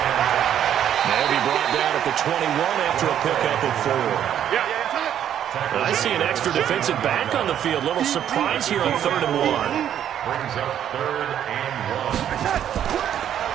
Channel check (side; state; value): left; quieter; 10.0 dB